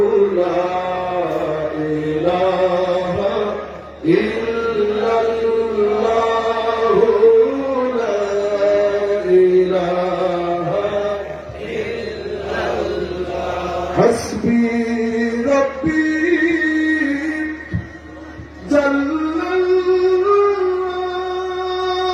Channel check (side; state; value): both; identical; correlation 1.00